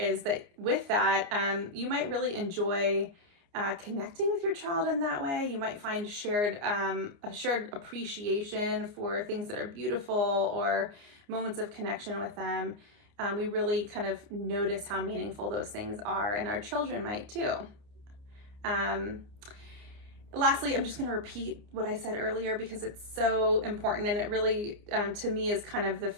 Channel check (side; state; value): left; late; 29 ms